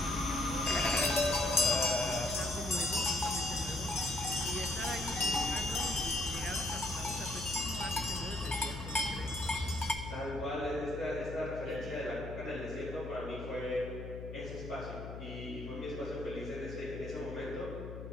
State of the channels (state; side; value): noise; left; hum, 9 dB below the sound